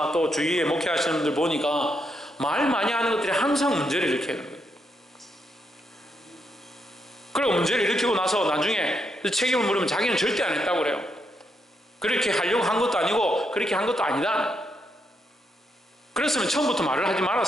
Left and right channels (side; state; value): both; normal; correlation 0.79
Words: 또 주위에 목회하시는 분들 보니까 말 많이 하는 것들이 항상 문제를 일으키는 거예요. 그리고 문제를 일으키고 나서 나중에 책임을 물으면 자기는 절대 안 했다고 그래요. 그렇게 하려고 한 것도 아니고 그렇게 한 것도 아니다. 그랬으면 처음부터 말을 하지